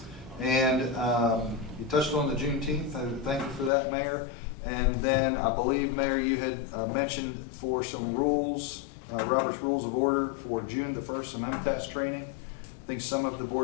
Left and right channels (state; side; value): drops out; right; at 3.7 s